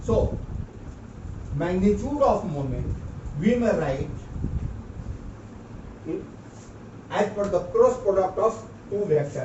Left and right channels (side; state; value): both; identical; correlation 1.00